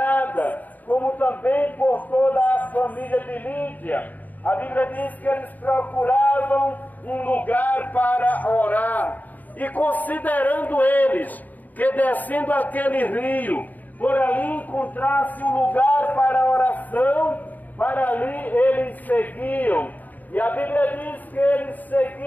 como também por toda a família de Lídia. A Bíblia diz que eles procuravam um lugar para orar, e considerando eles que descendo aquele rio, por ali encontrasse um lugar para oração, para ali eles seguiam. E a Bíblia diz que eles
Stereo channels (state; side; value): late; right; 0.082 ms